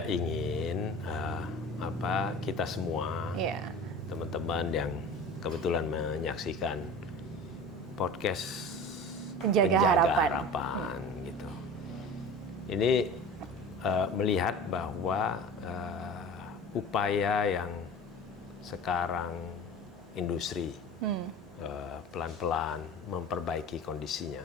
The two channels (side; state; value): both; normal; correlation 0.37